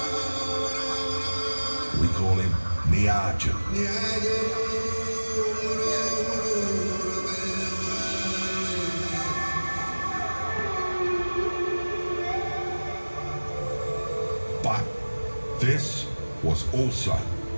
We call him Nieergoo. But this was also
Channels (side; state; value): both; inverted; correlation -1.00